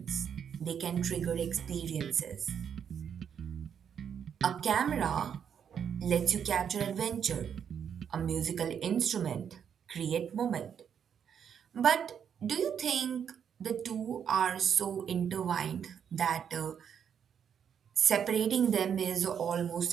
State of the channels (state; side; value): quieter; left; 8.0 dB